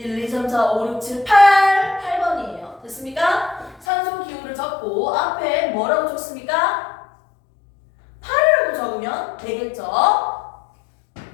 2, 3, 4, 5, 6, 7, 8번이에요. 됐습니까? 산소 기호를 적고 앞에 뭐라고 적습니까? 8이라고 적으면 되겠죠?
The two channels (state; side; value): drops out; right; at 3.9 s